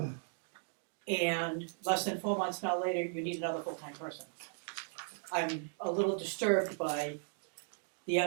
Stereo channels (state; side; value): silent; left; digital silence